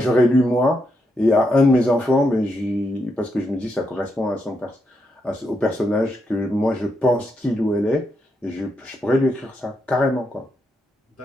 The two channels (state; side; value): normal; both; correlation 0.81